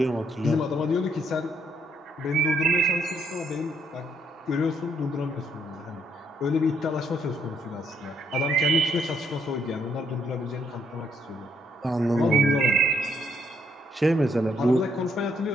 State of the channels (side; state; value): both; normal; correlation 0.72